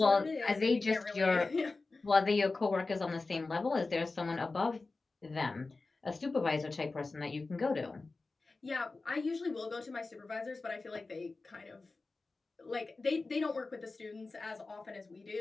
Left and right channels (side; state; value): right; quieter; 3.6 dB